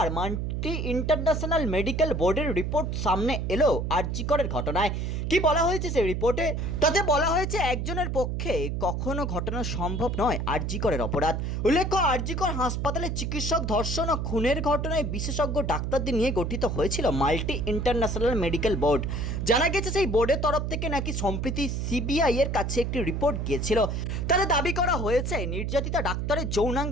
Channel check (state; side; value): noise; right; hum, 2 dB below the sound